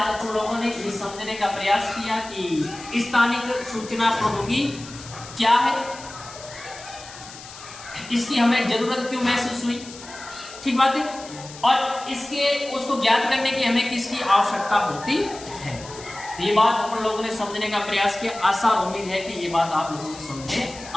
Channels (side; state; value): left; noise; hiss, 16 dB below the sound